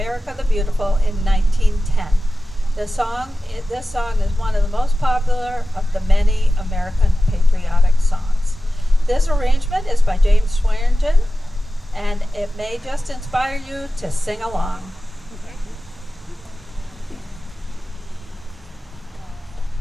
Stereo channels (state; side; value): normal; both; correlation 0.94